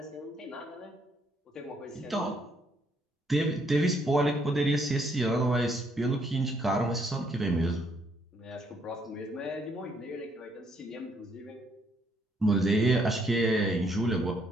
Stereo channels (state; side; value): normal; both; correlation 0.70